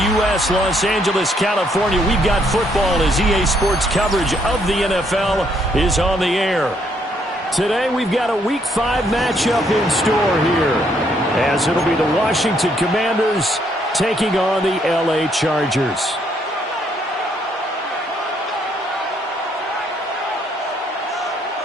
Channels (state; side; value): normal; both; correlation 0.70